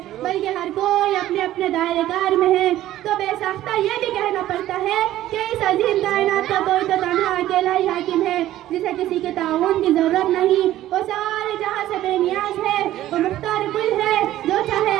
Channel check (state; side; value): quieter; left; 13.9 dB